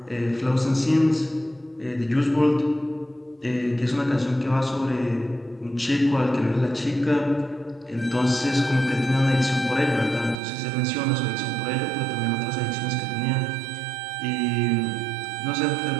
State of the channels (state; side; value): drops out; left; at 10.4 s